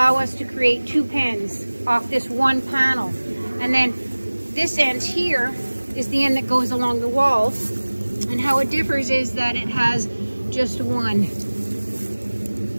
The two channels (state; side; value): inverted; both; correlation -1.00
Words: us to create 2 pens off this one panel. And then this end here is the end that goes along the walls, and how it differs is that it has just one